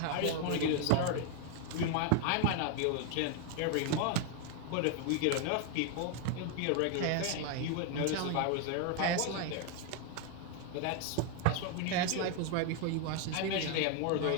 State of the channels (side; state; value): both; different; correlation 0.01